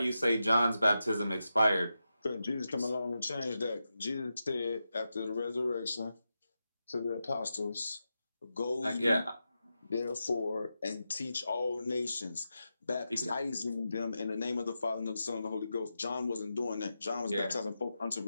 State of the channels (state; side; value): inverted; both; correlation -0.89